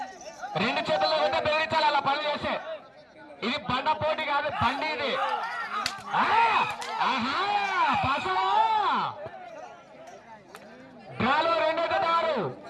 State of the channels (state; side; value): identical; both; correlation 1.00